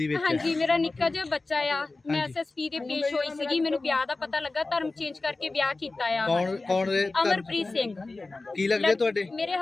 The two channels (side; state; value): right; quieter; 3.4 dB